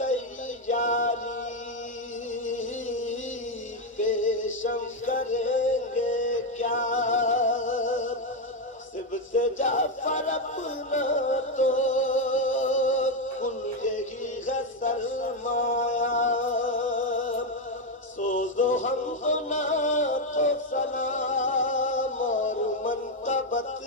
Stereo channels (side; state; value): both; normal; correlation 0.05